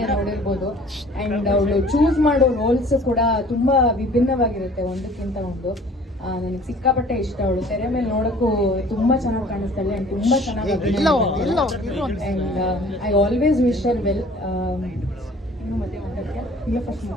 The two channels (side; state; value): both; normal; correlation 0.51